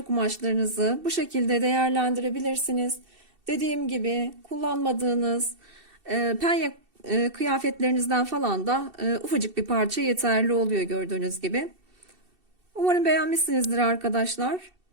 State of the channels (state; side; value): late; left; 2.7 ms